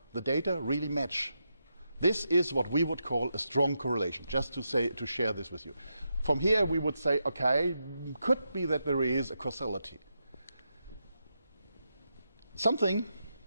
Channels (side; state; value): both; inverted; correlation -0.85